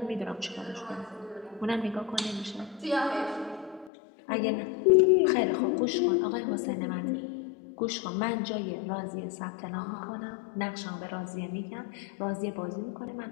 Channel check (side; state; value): right; drops out; at 3.9 s